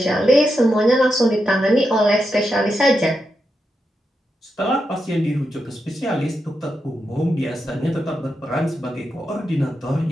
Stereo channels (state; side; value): normal; both; correlation 0.86